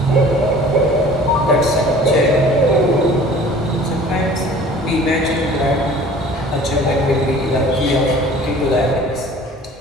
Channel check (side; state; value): both; normal; correlation 0.47